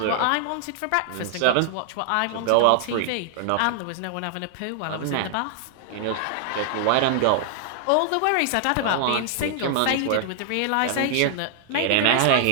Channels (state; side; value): different; both; correlation -0.01